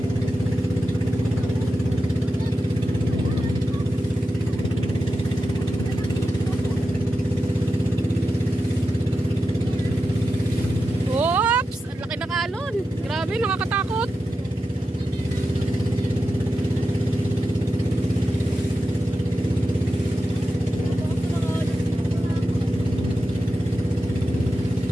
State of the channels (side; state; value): both; normal; correlation 0.90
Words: Oops! Ang laki ng alon. Grabe, nakakatakot.